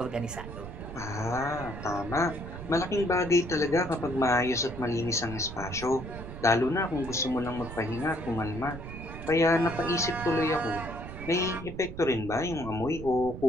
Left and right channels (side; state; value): right; noise; rumble, 10 dB below the sound